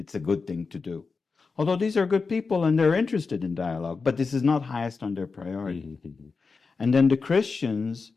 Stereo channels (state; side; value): quieter; right; 4.6 dB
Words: a good thing to do. Although these are good people and they're interested in dialogue, but this is not highest on their priority. And then the Christians,